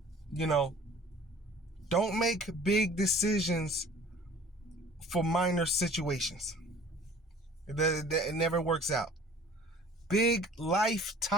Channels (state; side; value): normal; both; correlation 0.49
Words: Don't make big decisions for minor situations. It never works out. Big